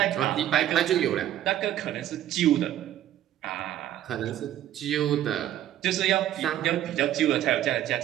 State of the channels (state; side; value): quieter; left; 12.1 dB